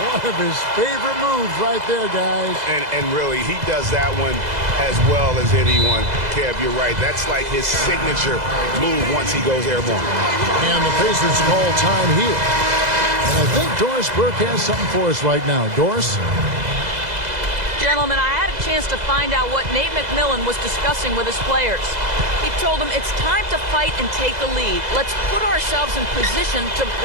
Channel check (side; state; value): left; late; 2.0 ms